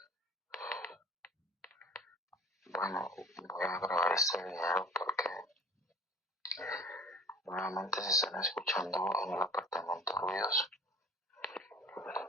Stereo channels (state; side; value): normal; both; correlation 0.45